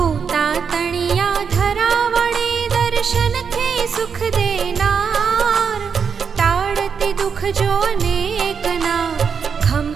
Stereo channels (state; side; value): quieter; left; 6.4 dB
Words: दर्शन थे सुख देनार। टाड़ती दुख जो अनेक ना